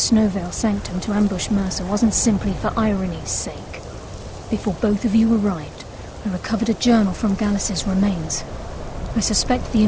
Veil Sanctum to ambush Mercer wasn't simply for irony's sake. Before both of you arrived, I recovered a journal from Gallus's remains. I suspect the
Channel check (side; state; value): both; identical; correlation 1.00